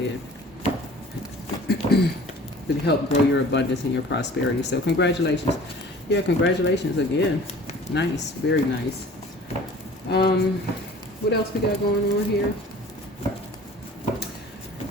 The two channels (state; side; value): normal; both; correlation 0.46